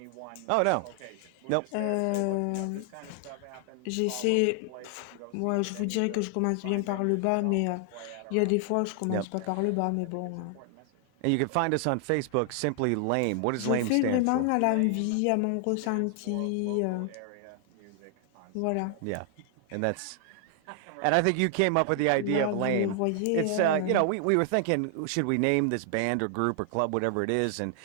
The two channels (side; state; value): both; different; correlation 0.00